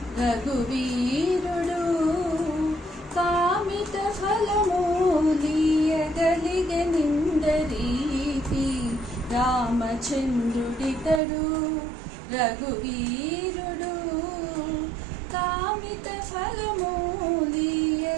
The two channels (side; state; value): left; drops out; at 11.2 s